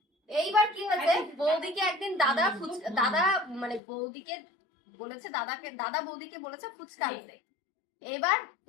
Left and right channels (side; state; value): right; drops out; at 3.8 s